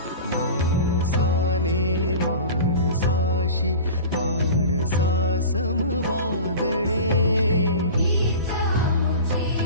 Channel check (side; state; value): both; inverted; correlation -0.35